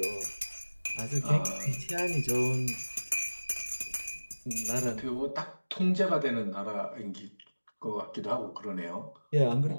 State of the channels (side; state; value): both; inverted; correlation -1.00